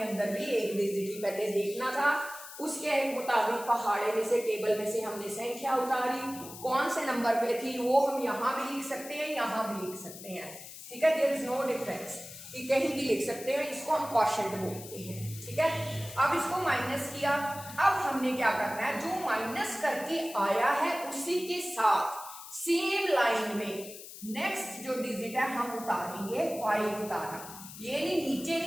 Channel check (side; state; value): left; noise; hiss, 14 dB below the sound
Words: अंदर भी एक डिजिट ही पहले देखना था। उसके मुताबिक पहाड़े में से, टेबल में से हमने संख्या उतारी, कौन से नंबर पे थी वो हम यहाँ भी लिख सकते हैं, यहाँ भी लिख सकते हैं। ठीक है, देयर इज नो डिफरेंस, कि कहीं भी लिख सकते हैं। इसको हम क्वोशिएंट बोलते हैं। ठीक है, अब इसको माइनस किया। अब हमने क्या करना है? जो माइनस करके आया है उसी के साथ सेम लाइन में नेक्स्ट जो डिजिट है हम उतारेंगे। 5 उतारा, ये नहीं, नीचे